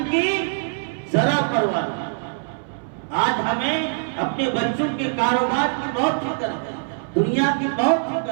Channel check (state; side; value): silent; left; 61 dB below the other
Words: کی ذرا پرواہ نہیں۔ آج ہمیں اپنے بچوں کے کاروبار کی بہت فکر ہے، دنیا کی بہت